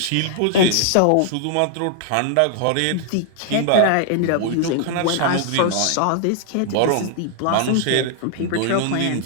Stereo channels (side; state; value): both; different; correlation 0.00